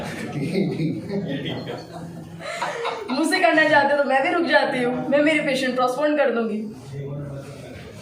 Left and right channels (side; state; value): both; identical; correlation 1.00